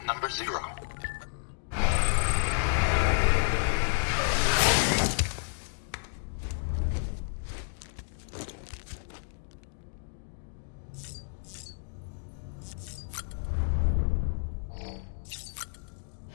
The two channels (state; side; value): silent; right; digital silence